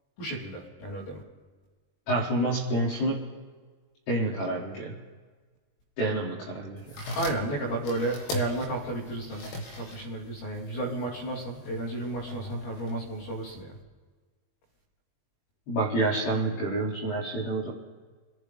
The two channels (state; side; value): late; right; 21 ms